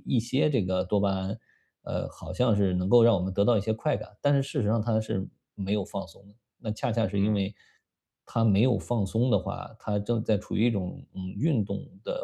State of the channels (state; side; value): identical; both; correlation 1.00